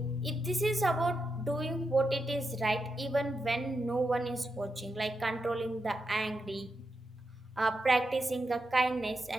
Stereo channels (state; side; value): normal; both; correlation 0.86